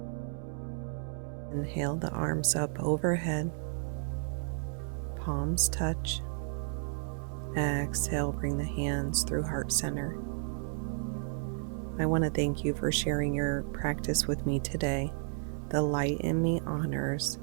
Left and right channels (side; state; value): left; silent; 56 dB below the other